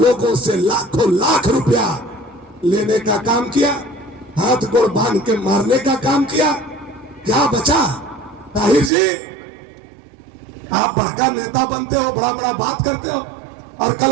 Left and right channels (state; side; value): drops out; left; at 8.9 s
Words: से लाखों लाख रुपया लेने का काम किया, हाथ गोड़ बांध के मारने का काम किया। क्या बचा? ताहिर जी, आप बड़का नेता बनते हो, बड़ा बड़ा बात करते हो, और कल